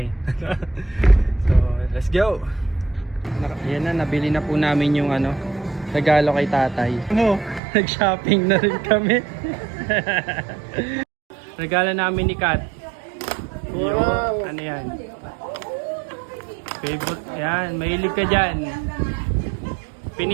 eh. So let's go. Yan na, nabili na po namin yung regalo kay tatay. Nag-shopping na rin kami. Regalo namin ni Kat. Wow. Ano yan? Favorite yan, mahilig ka dyan.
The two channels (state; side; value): drops out; left; at 7.6 s